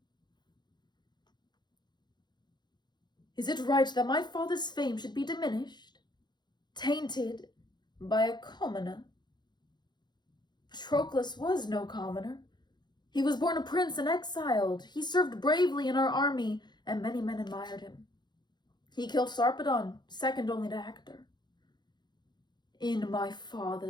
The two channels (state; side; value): late; right; 0.21 ms